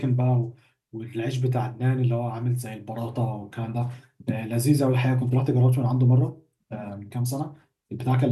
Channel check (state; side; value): identical; both; correlation 1.00